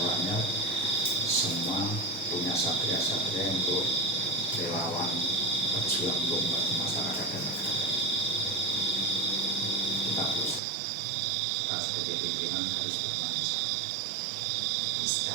semua punya satria-satria untuk relawan berjuang untuk membantu masyarakat dan negara. Kita berusaha. Kita sebagai pimpinan harus bertanggung jawab.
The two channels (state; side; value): drops out; left; at 10.6 s